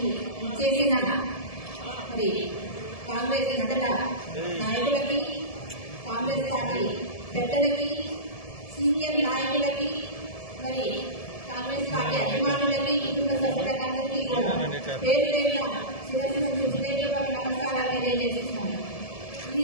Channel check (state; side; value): late; right; 1.7 ms